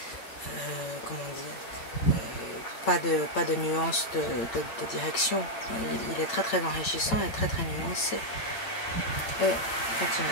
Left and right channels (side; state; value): right; late; 8.9 ms